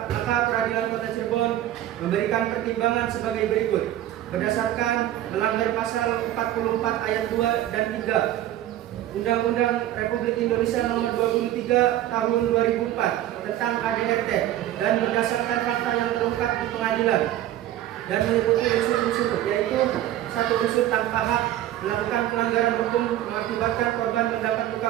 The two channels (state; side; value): quieter; left; 13.1 dB